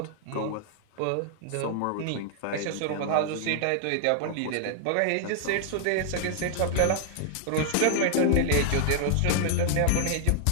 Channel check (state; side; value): different; both; correlation 0.00